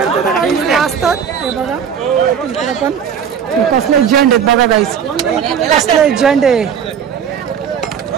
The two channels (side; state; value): left; quieter; 7.7 dB